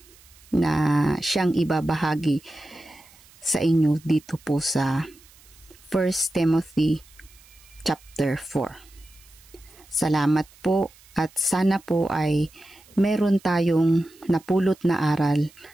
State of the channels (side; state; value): right; noise; hiss, 26 dB below the sound